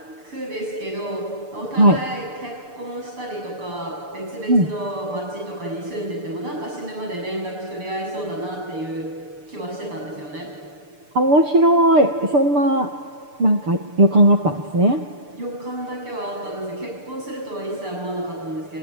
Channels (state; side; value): late; left; 6.8 ms